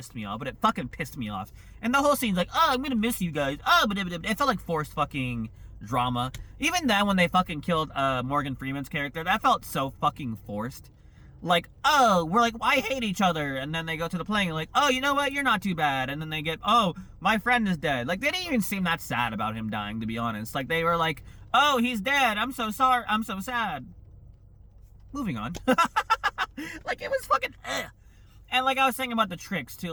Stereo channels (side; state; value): both; identical; correlation 1.00